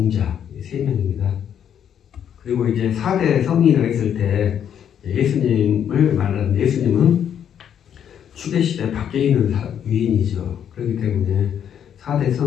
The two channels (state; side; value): quieter; right; 9.0 dB